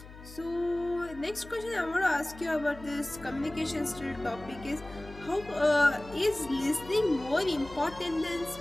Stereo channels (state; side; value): noise; left; hum, 17 dB below the sound